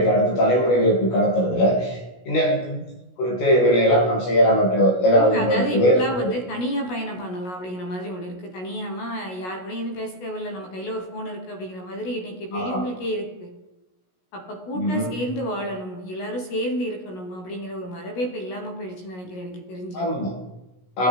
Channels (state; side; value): late; right; 16 ms